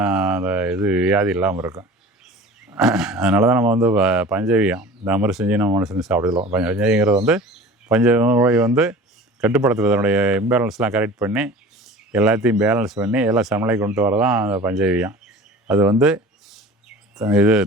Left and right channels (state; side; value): normal; both; correlation 0.40